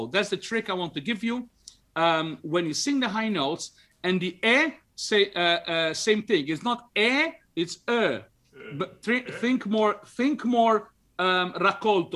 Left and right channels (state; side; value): identical; both; correlation 1.00